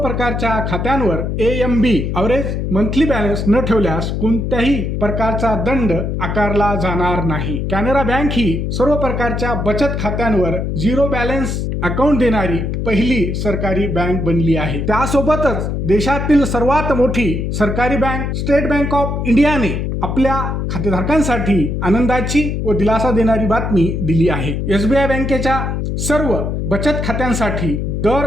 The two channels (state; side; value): noise; left; hum, 2 dB below the sound